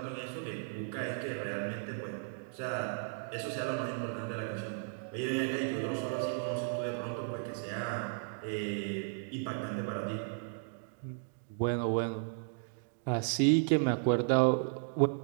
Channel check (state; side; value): silent; left; digital silence